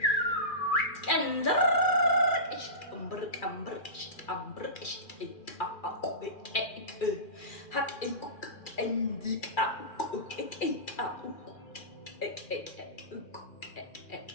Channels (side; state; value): right; late; 2.4 ms